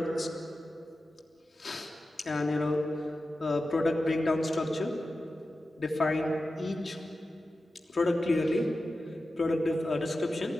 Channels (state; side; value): normal; both; correlation 0.93